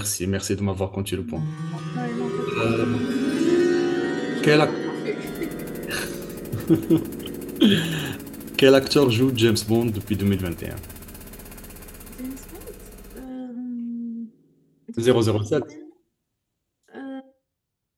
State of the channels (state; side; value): identical; both; correlation 1.00